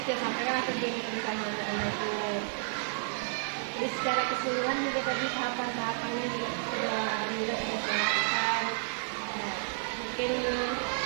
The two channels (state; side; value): silent; left; 57 dB below the other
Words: saya sampaikan tujuan kita mengajar itu. Jadi secara keseluruhan juga tadi tahapan-tahapannya juga sudah saya lakukan. Nah, mungkin yang